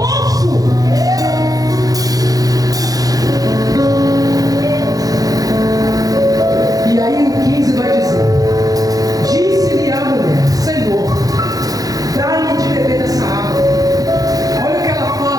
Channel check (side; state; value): left; late; 0.18 ms